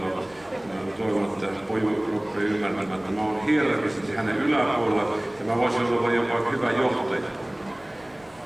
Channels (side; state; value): right; noise; rumble, 29 dB below the sound